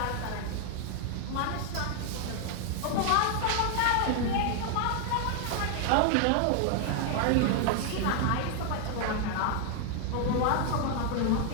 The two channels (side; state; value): both; different; correlation 0.00